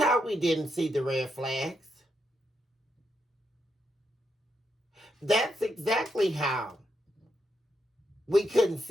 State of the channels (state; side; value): normal; both; correlation 0.82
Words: we didn't see the red flags. That's exactly how we couldn't